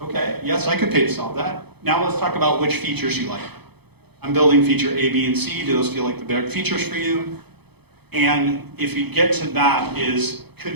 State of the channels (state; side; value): late; left; 0.98 ms